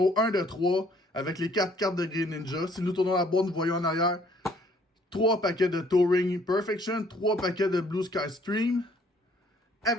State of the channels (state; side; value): normal; both; correlation 0.61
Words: 1 de 3, avec les 4 cartes de Greninja. Si nous tournons la boîte, nous voyons en arrière 3 paquets de Touring Perfection, 3 paquets de Blue Sky Stream,